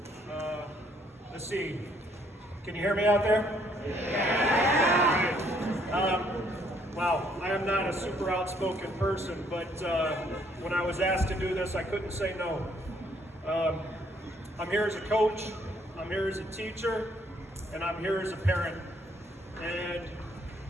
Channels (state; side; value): normal; both; correlation 0.67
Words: Let's see. Can you hear me out there? Wow, I am not a super outspoken person, but when I was asked to do this, I couldn't say no. I'm here as a coach, I'm here as a teacher, and I'm here as a parent. And